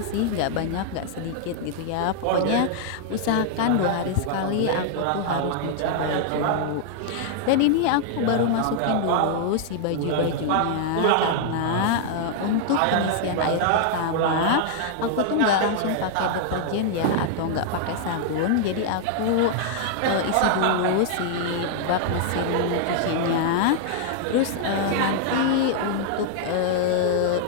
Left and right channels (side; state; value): both; different; correlation -0.01